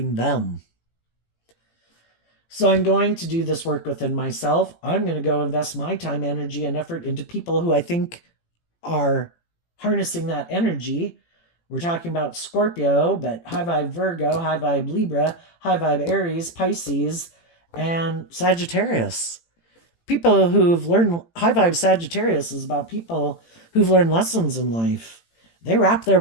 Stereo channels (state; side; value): late; right; 18 ms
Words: them. So I'm going to do this work within myself. I'm going to go invest my time, energy, and effort into people who I think are harnessing that energy. We're talking about Scorpio, but high vibe Virgo, high vibe Libra, high vibe Aries, Pisces, and Sagittarius. People who've learned, high vibe Sagittarius is about people who've learned lessons in life. They wrap their